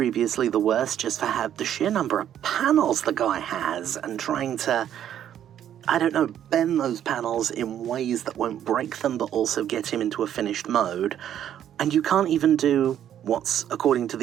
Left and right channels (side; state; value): left; quieter; 10.4 dB